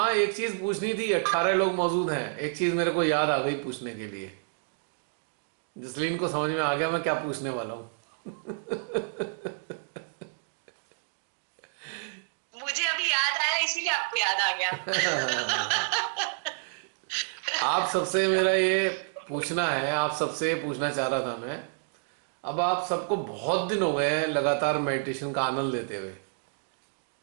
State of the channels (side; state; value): left; silent; digital silence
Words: एक चीज पूछनी थी, 18 लोग मौजूद हैं, एक चीज मेरे को याद आ गई पूछने के लिए। जसलीन को समझ में आ गया मैं क्या पूछने वाला हूँ। मुझे अभी याद आया, इसीलिए आपको याद आ गया। आप सबसे मेरा ये पूछना है, आप सबसे पूछना चाह रहा था मैं। अब आप सबको बहुत दिन हो गए हैं लगातार मेडिटेशन का आनंद लेते हुए।